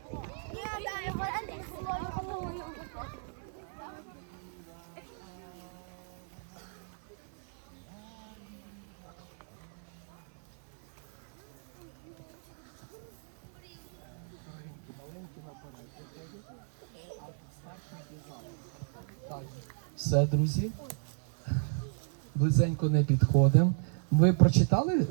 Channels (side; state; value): left; silent; 55 dB below the other